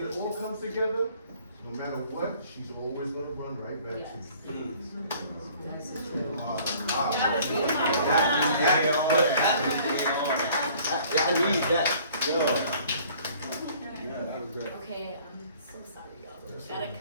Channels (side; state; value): both; inverted; correlation -0.54